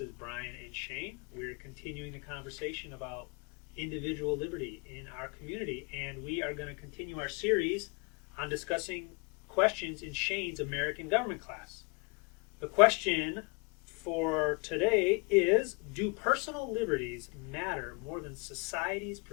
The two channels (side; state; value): right; quieter; 31.5 dB